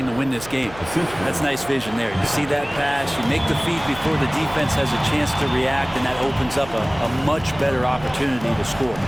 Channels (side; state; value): right; noise; hum, 17 dB below the sound